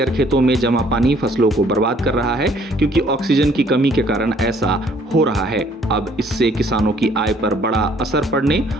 खेतों में जमा पानी फसलों को बर्बाद कर रहा है, क्योंकि ऑक्सीजन की कमी के कारण ऐसा हो रहा है। अब इससे किसानों की आय पर बड़ा असर पड़ने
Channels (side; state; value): both; normal; correlation 0.61